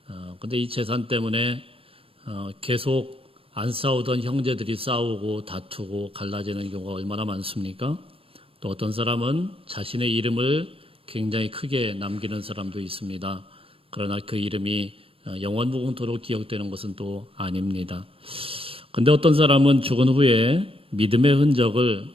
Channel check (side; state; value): left; late; 0.27 ms